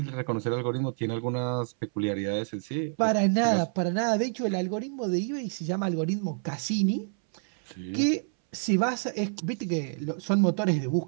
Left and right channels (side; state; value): left; silent; 59 dB below the other